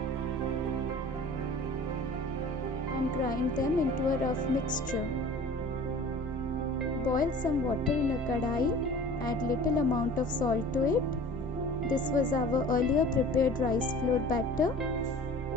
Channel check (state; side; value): normal; both; correlation 0.43